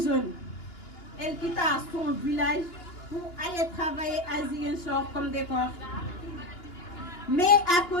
elle quitta son village pour aller travailler à Ziguinchor comme décor. Mais à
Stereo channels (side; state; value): right; late; 2.9 ms